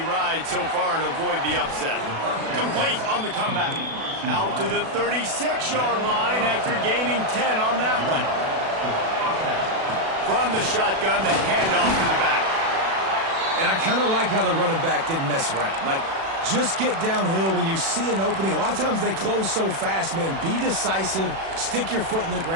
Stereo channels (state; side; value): late; left; 36 ms